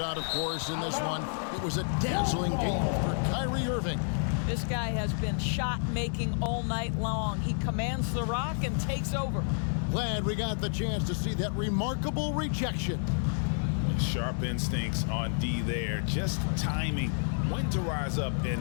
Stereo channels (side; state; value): right; silent; digital silence